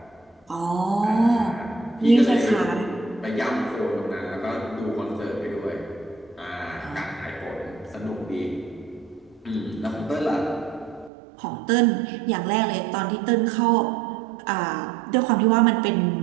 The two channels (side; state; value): left; drops out; at 11.1 s